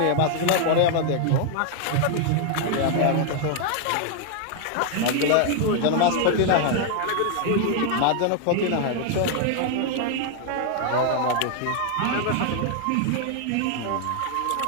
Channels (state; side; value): different; both; correlation 0.00